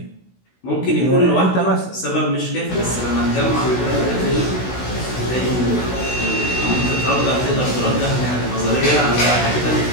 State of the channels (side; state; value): right; late; 16 ms